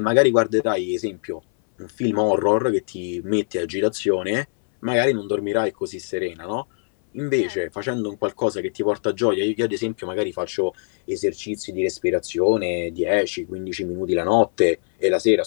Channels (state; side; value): silent; right; 63 dB below the other